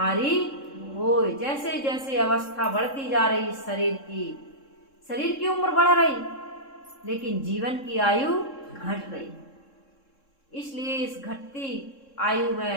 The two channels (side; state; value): right; late; 3.7 ms